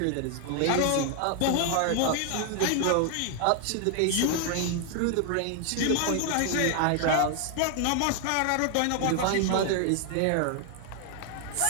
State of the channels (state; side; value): different; both; correlation 0.00